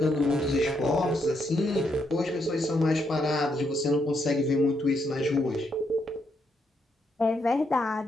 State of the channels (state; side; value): normal; both; correlation 0.77